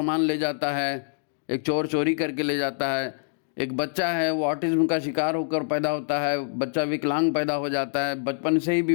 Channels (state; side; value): silent; right; digital silence